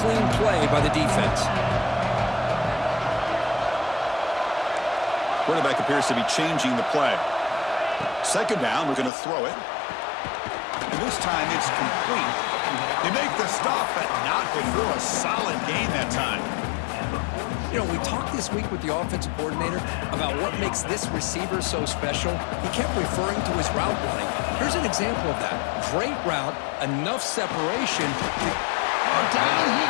clean play by the defense. Quarterback appears to be changing the play. 2nd down, we're going to throw it. And this time it's complete. They make the stop, but not before a solid gain that time. You know, we talked this week with the offensive coordinator about what makes this receiver so special. He kept referring to his route running. Here's an example of that. Great route, enough separation. Down he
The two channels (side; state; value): right; drops out; at 9.1 s